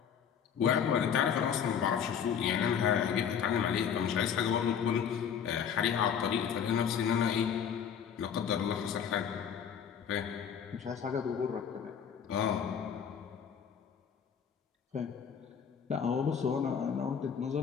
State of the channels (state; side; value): quieter; right; 7.8 dB